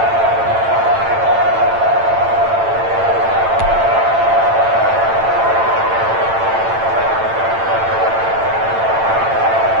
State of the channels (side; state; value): left; late; 8.9 ms